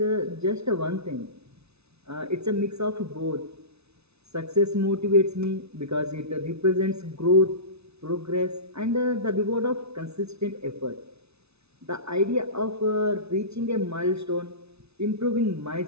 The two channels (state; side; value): late; left; 0.80 ms